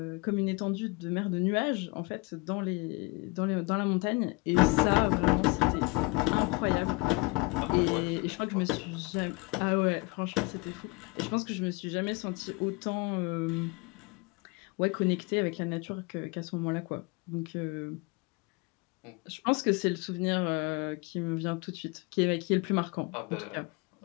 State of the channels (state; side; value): quieter; right; 28.0 dB